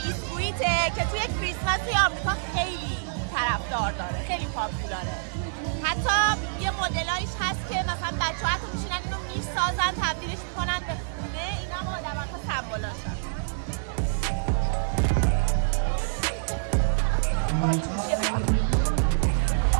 بیسکویته که توی کریسمسی آمریکا خیلی طرفدار داره، خیلی پاپولاره. حتی یه مدلایش هست که مثلا بچه‌ها حتی میشینن اینو میسازن، تبدیلش میکنن به خونه. اینا هم آدم‌ها سمبولاشن.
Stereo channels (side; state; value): left; silent; digital silence